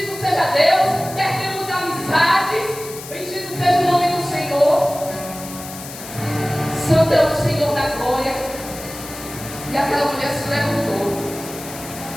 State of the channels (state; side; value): noise; left; hiss, 13 dB below the sound